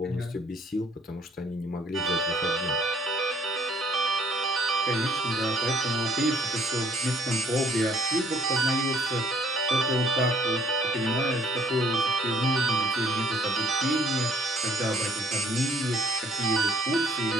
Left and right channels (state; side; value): normal; both; correlation 0.61